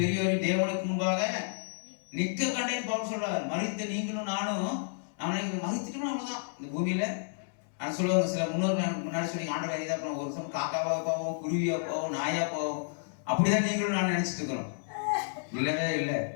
பெரியோரையும் தேவனுக்கு முன்பாக நிற்க கண்டேன் பவுல் சொல்றாரு. மரித்த நீங்களும் நானும் மரித்துட்டோம்னா அவ்வளவுதான் இந்த பூமியில. நான் சொல்லுவாங்க, சில முன்னாடி சொல்லி ஆண்டவர் இதாக போவோம், ஒரு சமயம் காக்காவா போவோம், குருவியா போவோம், நாயா போவோம். அப்படிதான் நீங்களும் நான் நினைச்சிட்டு இருக்கிறோம். இல்லவே இல்லை.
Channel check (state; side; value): silent; right; 57 dB below the other